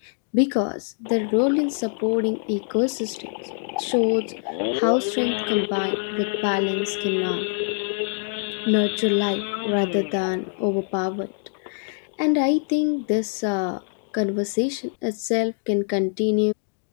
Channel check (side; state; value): right; silent; digital silence